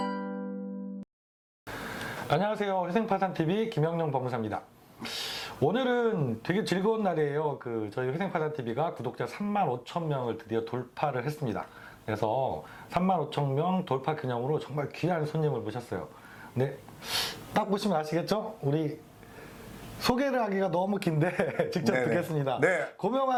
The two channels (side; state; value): both; identical; correlation 1.00